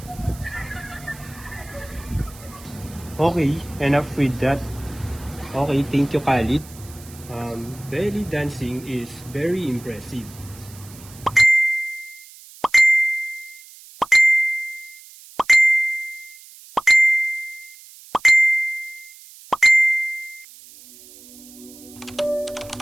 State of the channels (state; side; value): noise; right; hiss, 20 dB below the sound